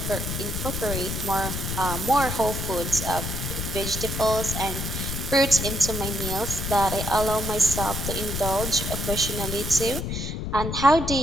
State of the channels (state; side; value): noise; left; rumble, 4 dB below the sound